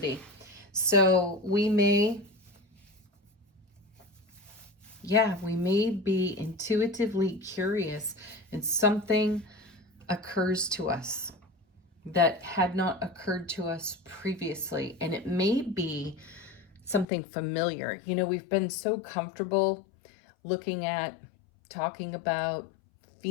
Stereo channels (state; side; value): drops out; right; at 17.1 s